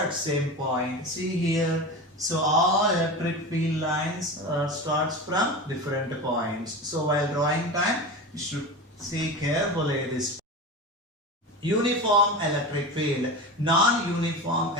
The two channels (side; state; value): both; normal; correlation 0.27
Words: same point. See here, so all electric field lines starts from different points. So while drawing time, you should see carefully this. Uniform electric field, non-uniform